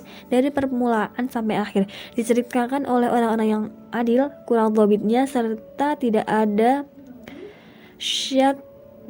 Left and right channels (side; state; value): both; identical; correlation 1.00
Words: dari permulaan sampai akhir, diceritakan oleh orang-orang yang adil, kurang dhabitnya, serta tidak ada syadz